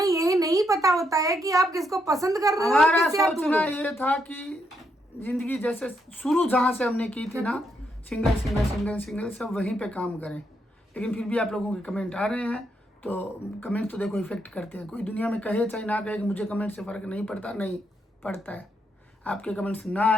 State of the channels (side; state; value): both; normal; correlation 0.78